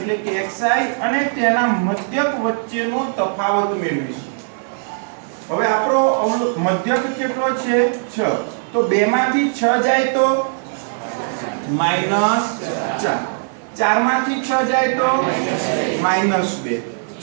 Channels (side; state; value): left; silent; digital silence